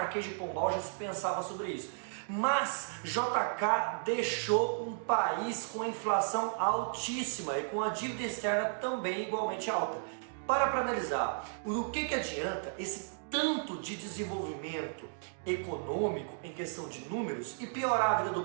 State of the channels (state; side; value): silent; left; digital silence